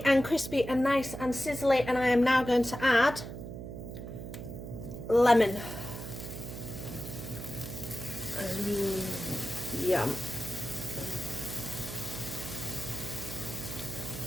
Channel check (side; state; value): right; noise; hum, 9 dB below the sound